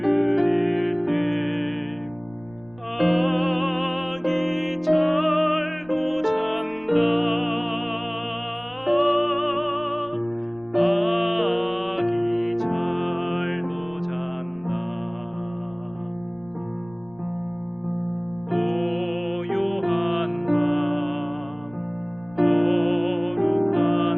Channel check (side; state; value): left; noise; rumble, 27 dB below the sound